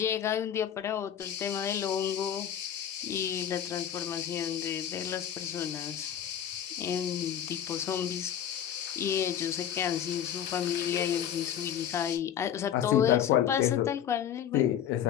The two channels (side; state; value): right; quieter; 9.6 dB